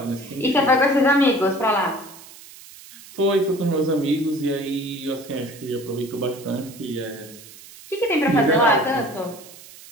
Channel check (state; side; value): noise; right; hiss, 19 dB below the sound